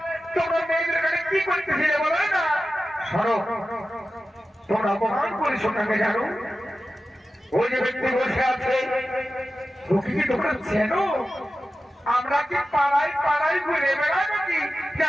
তোমরা মেয়েদের ঘাটে কি করতেছিলে বলো না? সরো, তোমরা অপমান করেছো কাকে জানো? ওই যে ব্যক্তি বসে আছে ওকে কি তোমরা চেনো? আমরা কি পাড়ায় পাড়ায় ঘুরে বেড়াই নাকি যে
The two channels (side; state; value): both; normal; correlation 0.93